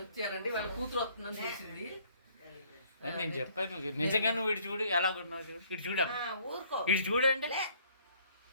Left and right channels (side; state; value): both; inverted; correlation -0.60